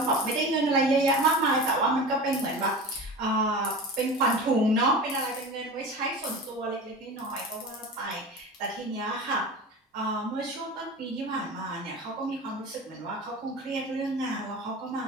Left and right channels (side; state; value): both; normal; correlation 0.32